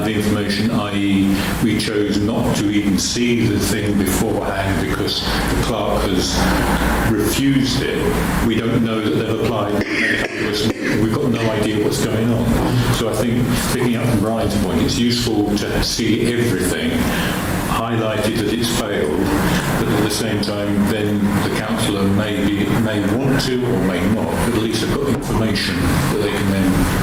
the information, i.e. we chose not to even see the thing beforehand because the clerk has refused it, we don't know that they've applied. We've got no idea what's going on. So I think, picking up from Brian's point, it's useful to see everything, highlighted that it's failed, but at the same time then the councillor may want to or may not, but at least they've got information that they can then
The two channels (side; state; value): both; identical; correlation 1.00